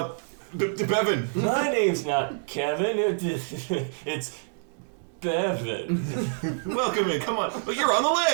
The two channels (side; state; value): left; silent; digital silence